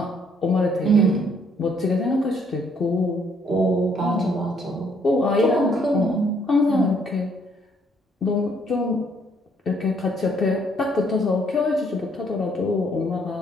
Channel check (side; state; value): both; normal; correlation 0.67